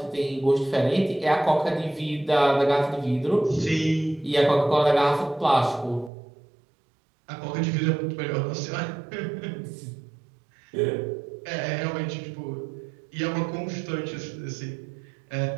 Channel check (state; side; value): drops out; left; at 6.1 s